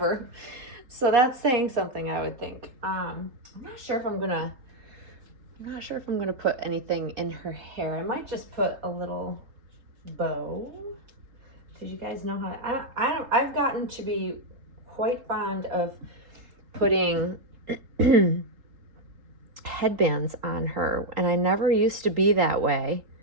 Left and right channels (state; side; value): late; left; 3.8 ms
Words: So that's saying something, I would think. I'm not sure if I'm gonna put anything in her hair. I might just put a little bow, because you guys know how I've gotten to be quite fond of putting headbands on her, and I never used to be that way.